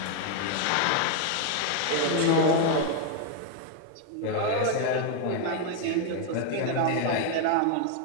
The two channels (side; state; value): both; different; correlation 0.00